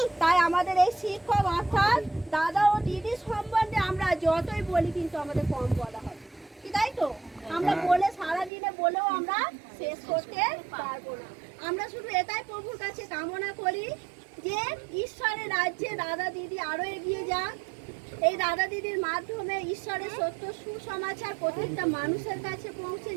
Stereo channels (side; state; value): left; drops out; at 8.5 s